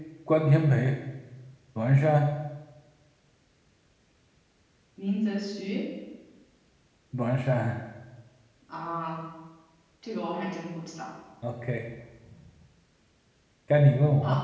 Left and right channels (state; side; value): identical; both; correlation 1.00